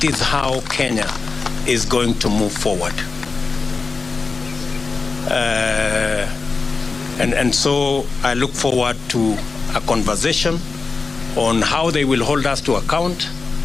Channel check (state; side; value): quieter; right; 4.3 dB